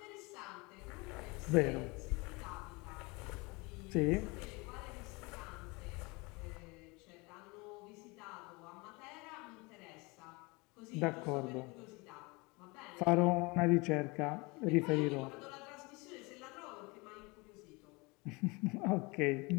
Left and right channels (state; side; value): quieter; right; 26.4 dB